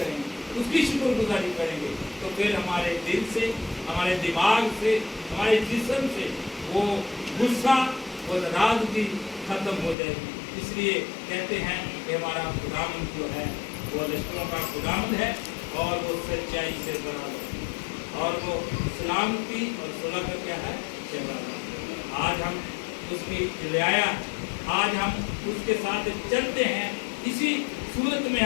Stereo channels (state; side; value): drops out; right; at 10.0 s